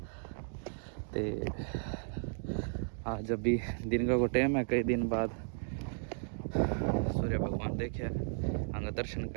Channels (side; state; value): left; silent; digital silence